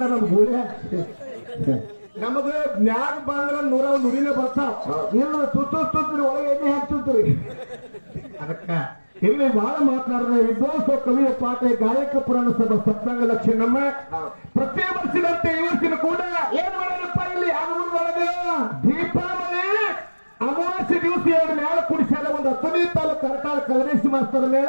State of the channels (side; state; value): both; inverted; correlation -1.00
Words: ನಮ್ ಗೂಡೆ ನಮಗ ನ್ಯಾಗ ಬಂದ್ರ ನುರಿನೇ ಬರ್ತಾವ ಇಲ್ಲ ತುತ್ತುತ್ರಿ ಒಳಗೆ ಎಣ್ಣೆ ಹಾಕ್ತಿರ್ತೀರಿ. ಅದಕ್ಕ ಇಲ್ಲಿ ಬಹಳ ಮಾತನಾಡಿದ ವಿದ್ವಾಂಸ ಕವಿಯ ಪಾಠ ಗಾಯಕ ಪುರಾಣ ಸಭಾ ಸಪ್ತಾಂಗ ಲಕ್ಷ್ಮಮ್ಮ ಪ್ರತಿ ವರ್ಷದಂತೆ ಈ ವರ್ಷದ ಕೂಡ ಏನ್ ಮಾಡೋಣಪ್ಪ ಇಲ್ಲಿ ಆನಂದೊಳಗೆ ದೀಪಾವಳಿ ಅಮಾವಾಸ್ಯೆ ದಿವಸ ಎರಡು ಮೇಳ ಕುಡಿಸ್ಯಾರ. ಒಂದು 15 ತಾಲೂಕು ಕರ್ನಾಟಕ ಕಲರೇಶಿ ಮಾಸ್ತರ ಮೇಳ,